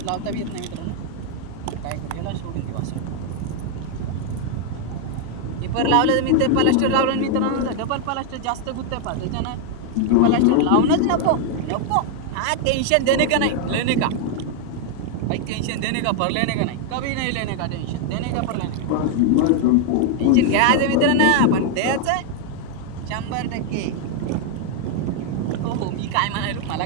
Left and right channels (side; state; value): both; different; correlation 0.00